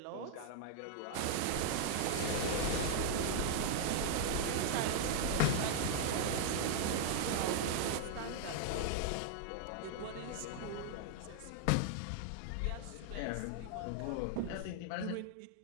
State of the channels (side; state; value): both; different; correlation -0.01